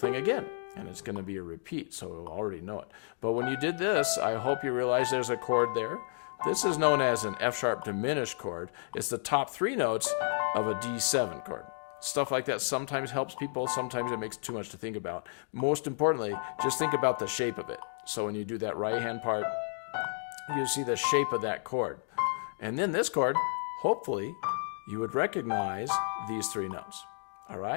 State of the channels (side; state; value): right; silent; digital silence